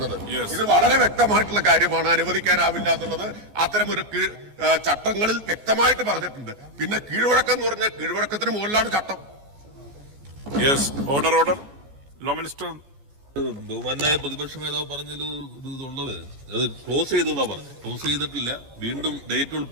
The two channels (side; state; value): left; late; 14 ms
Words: ഇത് വളരെ വ്യക്തമായിട്ടുള്ള കാര്യമാണ്, അനുവദിക്കാനാവില്ല എന്നുള്ളത് അത്തരമൊരു ചട്ടങ്ങളിൽ വ്യക്തമായിട്ട് പറഞ്ഞിട്ടുണ്ട്. പിന്നെ കീഴ്വഴക്കം എന്ന് പറഞ്ഞാൽ കീഴ്വഴക്കത്തിന് മുകളിലാണ് ചട്ടം. ബഹുമാനായ പ്രതിപക്ഷ നേതാവ് പറഞ്ഞൊരു ഇതുള്ളത് അത് ക്ലോസ് ചെയ്തെന്നാ പറഞ്ഞു. ക്ലോസ് ചെയ്തിട്ടില്ല, വീണ്ടും ഡേറ്റ്